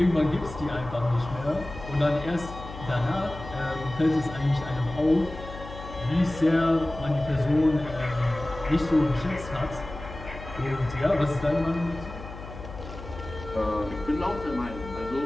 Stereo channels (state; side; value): noise; left; hum, 12 dB below the sound